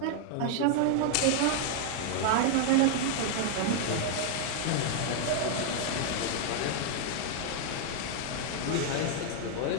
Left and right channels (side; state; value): both; different; correlation 0.00